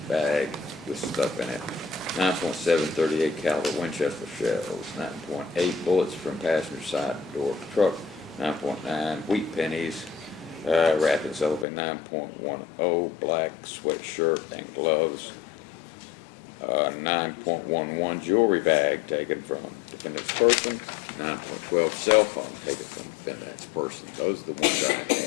bag with stuff in it, 9.7 38 caliber Winchester shells, 9.8 bullets from passenger side door of the truck, 9.9 wheat pennies wrapped in cellophane, 9.10 black sweatshirt and gloves, 9.11 jewelry bag taken from defendant's person, 9.12 cell phone taken from defendant's person. Those are the ones I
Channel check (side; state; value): right; drops out; at 11.7 s